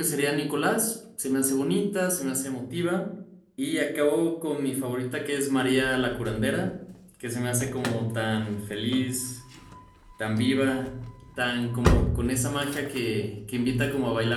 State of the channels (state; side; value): identical; both; correlation 1.00